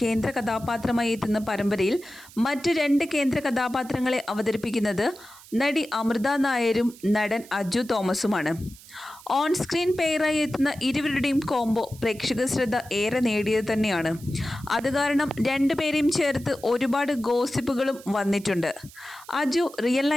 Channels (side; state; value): right; noise; hiss, 21 dB below the sound